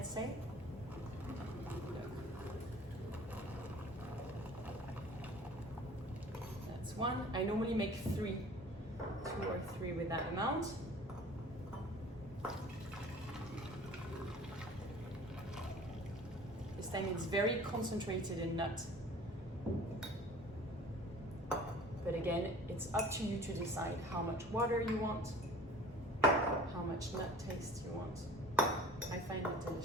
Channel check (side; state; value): both; normal; correlation 0.46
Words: say. That's one. I normally make 2 or 3 with that amount. This time it's very concentrated in nut. But again, it's up to you to decide how much water you want, how much nut taste you want. I find it